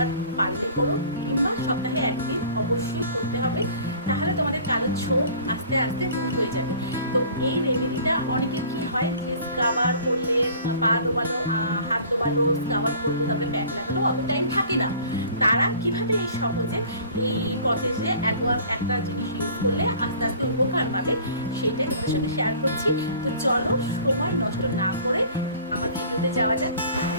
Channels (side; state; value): both; inverted; correlation -0.47